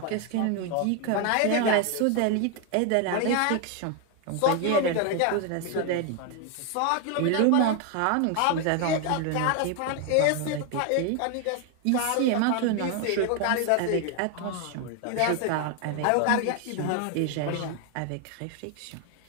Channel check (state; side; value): different; both; correlation 0.01